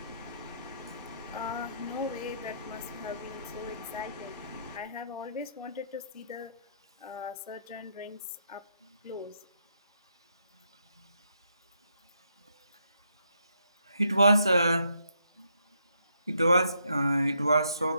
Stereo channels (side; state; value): both; inverted; correlation -0.76